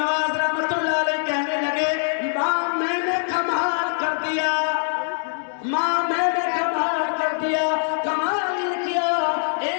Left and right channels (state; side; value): silent; right; digital silence